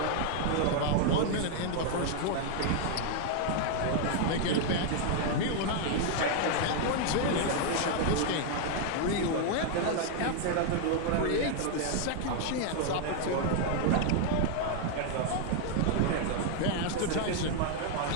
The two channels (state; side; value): different; both; correlation 0.00